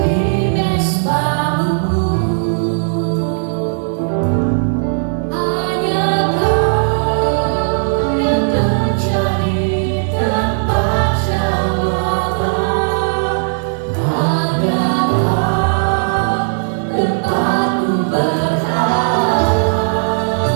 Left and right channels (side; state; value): left; silent; digital silence